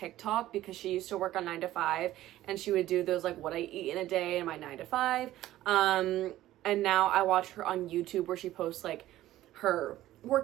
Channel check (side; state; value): left; quieter; 14.6 dB